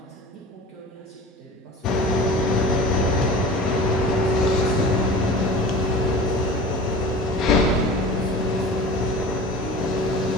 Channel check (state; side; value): normal; both; correlation 0.37